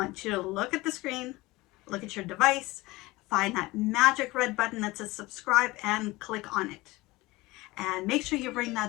you to look at the screen, look at your device, find that magic red button that says subscribe and click on it. And make sure you ring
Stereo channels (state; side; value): quieter; right; 20.8 dB